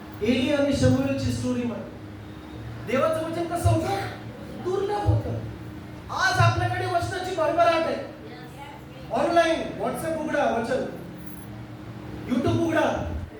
एली आणि शमूएलची स्टोरी मध्ये देवाचं वचन कसं होतं? दुर्लभ होतं. आज आपल्याकडे वचनाची भरभराट आहे. ऑनलाईन व्हॉट्सअप उघडा, वचन. युट्यूब उघडा,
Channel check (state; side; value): identical; both; correlation 1.00